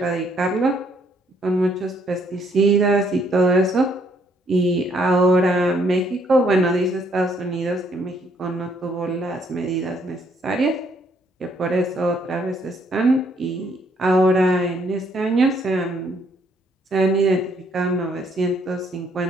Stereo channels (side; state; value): both; normal; correlation 0.68